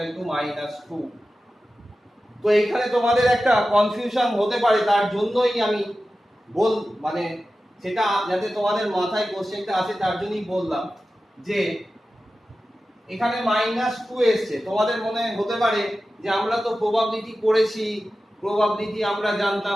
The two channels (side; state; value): both; normal; correlation 0.94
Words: টু মাইনাস 2। তো এখানে তোমাদের একটা কনফিউশন হতে পারে, তার জন্যই আমি মানে সেটা যাতে তোমাদের মাথায় কোশ্চেনটা আসে তার জন্যই বললাম যে এখানে -2 এসেছে। তোমাদের মনে হতে পারে যে আমরা তো প্রবাবিলিটি করেছি, প্রবাবিলিটি আমরা